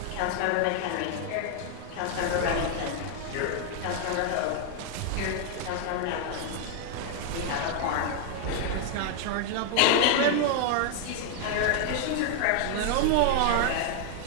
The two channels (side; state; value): both; different; correlation 0.00